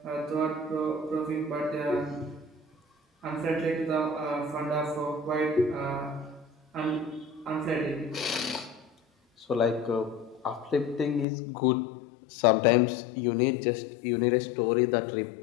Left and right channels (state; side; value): drops out; right; at 11.2 s